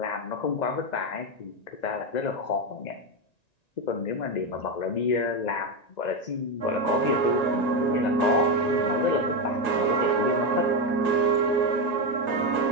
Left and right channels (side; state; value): right; late; 1.9 ms